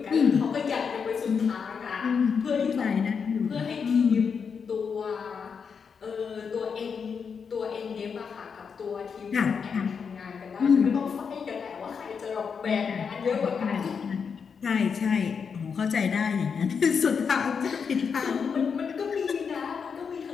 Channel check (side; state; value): right; quieter; 6.2 dB